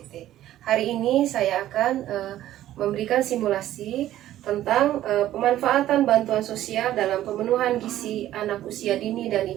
Hari ini saya akan memberikan simulasi tentang pemanfaatan bantuan sosial dalam pemenuhan gizi anak usia dini dan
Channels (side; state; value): left; quieter; 13.2 dB